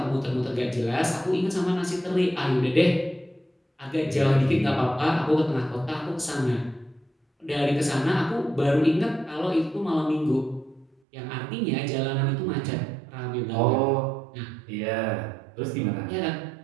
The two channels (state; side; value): drops out; left; at 11.0 s